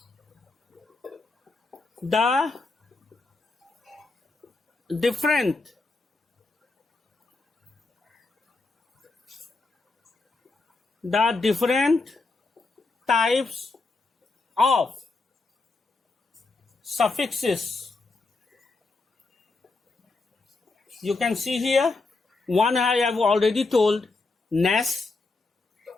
The different types of suffixes. You can see here, one I have already told, nest.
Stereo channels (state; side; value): quieter; right; 3.6 dB